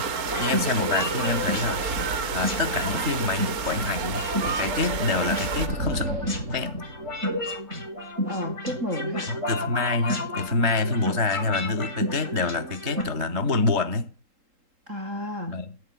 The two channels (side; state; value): left; late; 3.8 ms